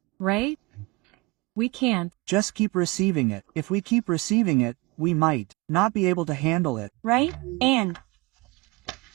Right? We can't. Just keep receiving it. If we keep receiving it, we might not be able to handle it. Right? And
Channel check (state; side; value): quieter; left; 24.0 dB